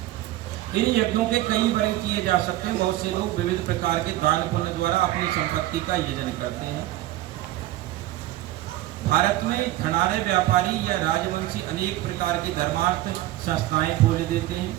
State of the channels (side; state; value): left; quieter; 15.6 dB